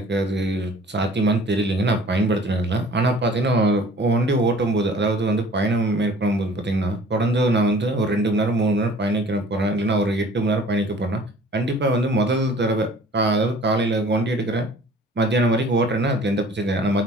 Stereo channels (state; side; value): normal; both; correlation 0.50